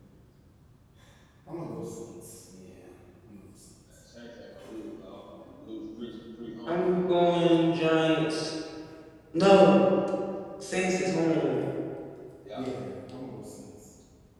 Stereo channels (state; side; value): identical; both; correlation 1.00